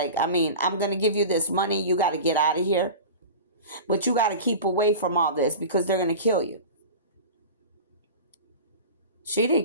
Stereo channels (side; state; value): both; inverted; correlation -0.33